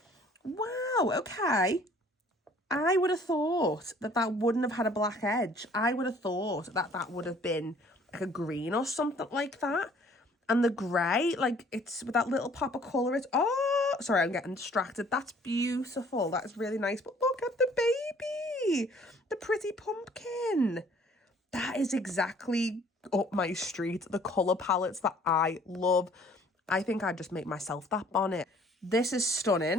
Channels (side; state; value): both; normal; correlation 0.56